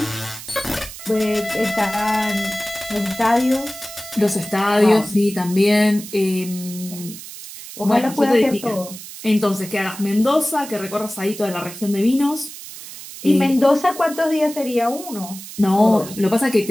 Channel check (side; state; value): right; noise; hiss, 13 dB below the sound